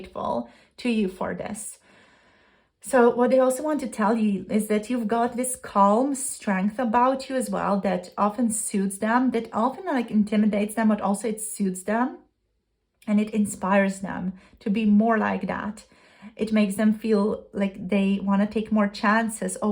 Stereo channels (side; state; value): both; identical; correlation 1.00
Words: to you for this. So what they also want to tell you is that you've got this calm strength about you as well that often suits them, that often like intimidates them, but also it suits them and it inspires them to be more like that. It makes them feel like they want to take more chances,